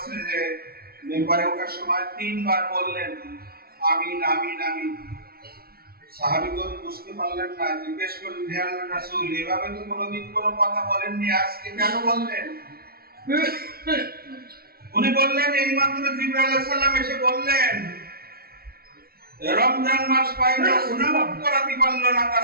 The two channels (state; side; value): late; left; 0.44 ms